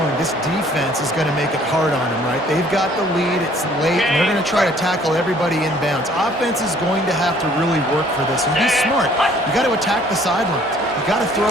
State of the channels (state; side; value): normal; both; correlation 0.58